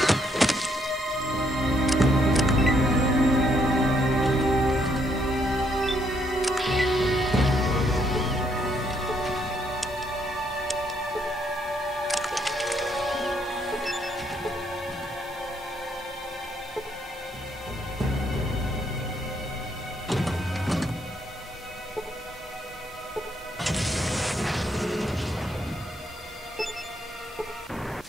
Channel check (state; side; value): normal; both; correlation 0.72